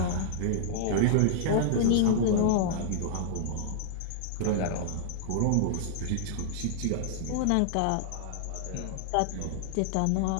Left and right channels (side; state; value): both; different; correlation -0.01